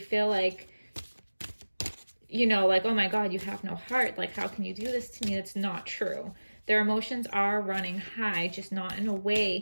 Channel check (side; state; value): both; inverted; correlation -1.00